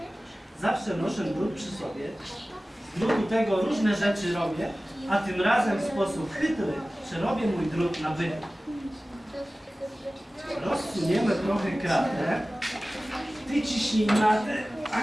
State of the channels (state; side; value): normal; both; correlation 0.97